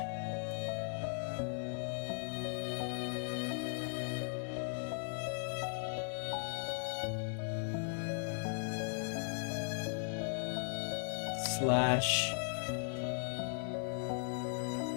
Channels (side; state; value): right; silent; 52 dB below the other